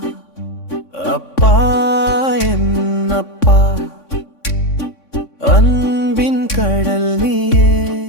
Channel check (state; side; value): late; right; 3.6 ms